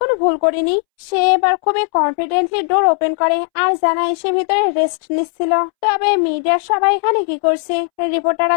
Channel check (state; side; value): silent; right; 68 dB below the other